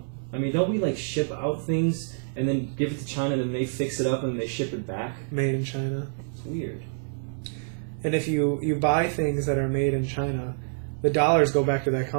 I mean, don't we like ship out things and then give it to China, and then they fix it up and they ship it back? made in China. It's weird. And if you buy things that are made in China, the dollars go back to that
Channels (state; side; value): silent; left; 60 dB below the other